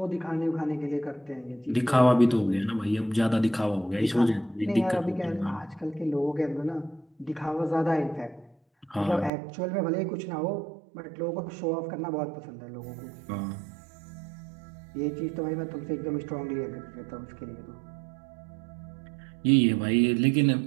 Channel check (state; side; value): drops out; left; at 9.3 s